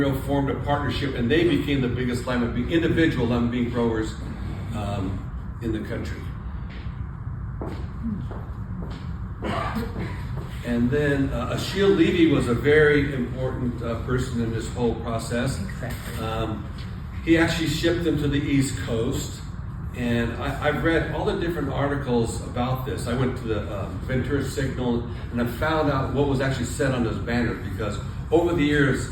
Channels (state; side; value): identical; both; correlation 1.00